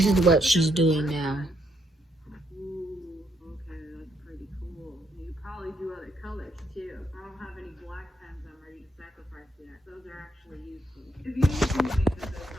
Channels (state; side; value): normal; both; correlation 0.75